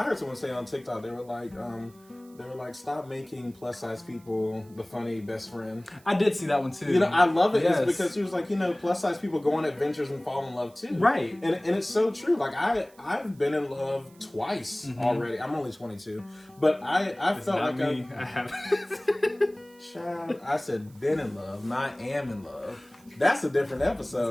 heard someone say on TikTok, they were like, stop making plus size people the funny best friend. I did see that one too. You know, I love it. Yes. It's because she was like, plus size people go on adventures and fall in love too. Right. And it's so true. Like I've been in love twice already. I'm only 22, but I felt like I haven't. Child, I said been in love, not am in love. That's a different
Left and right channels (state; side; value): noise; right; hiss, 28 dB below the sound